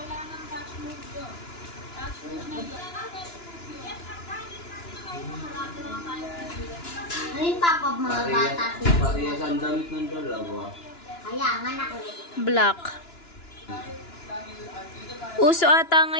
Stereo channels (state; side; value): late; right; 2.9 ms